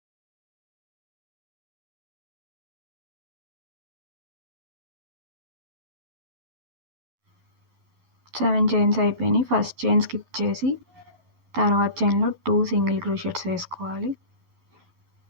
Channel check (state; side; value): late; left; 11 ms